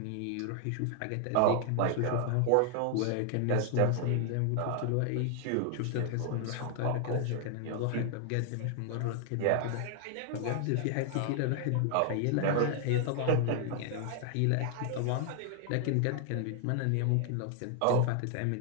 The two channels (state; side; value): different; both; correlation 0.00